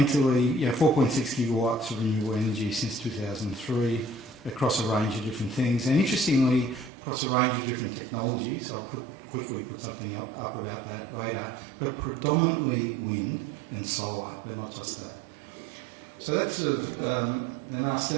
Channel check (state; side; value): drops out; left; at 6.9 s